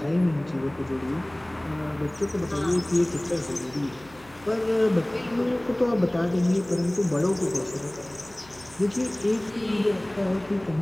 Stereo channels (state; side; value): noise; left; hum, 25 dB below the sound